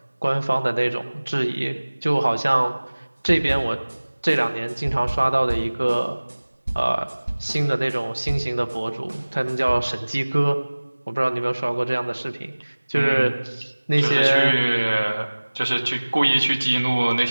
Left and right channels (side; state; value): both; inverted; correlation -1.00